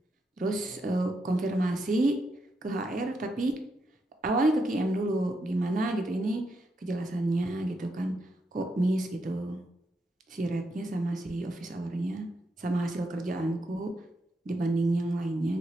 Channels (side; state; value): both; normal; correlation 0.82